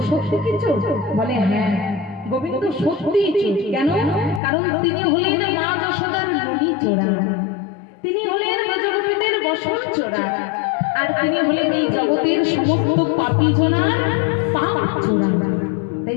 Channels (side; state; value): right; drops out; at 4.4 s